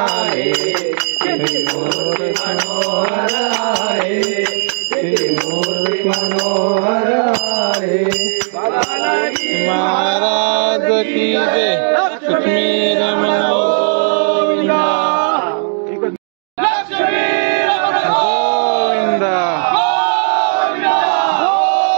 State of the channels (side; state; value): left; silent; digital silence